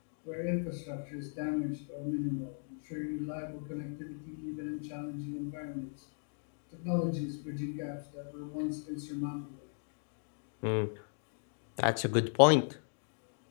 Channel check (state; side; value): silent; right; digital silence